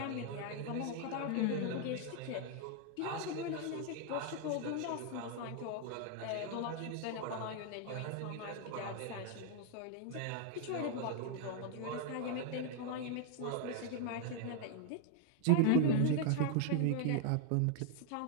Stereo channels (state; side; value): different; both; correlation 0.00